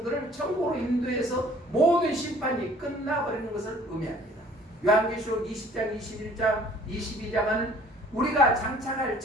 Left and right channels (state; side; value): normal; both; correlation 0.54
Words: 천국으로 인도해서 모든 심판이 끝나버리는 것을 의미합니다. 요한계시록 20장, 21장, 22장은 우리가 장착할